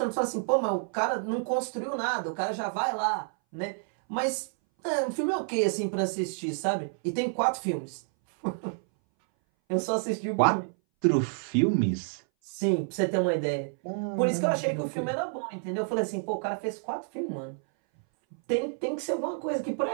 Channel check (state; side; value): silent; left; 58 dB below the other